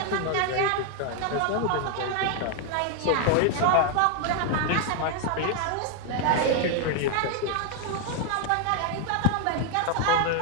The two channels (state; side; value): different; both; correlation 0.01